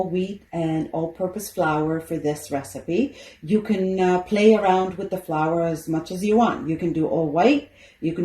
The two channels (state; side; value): identical; both; correlation 1.00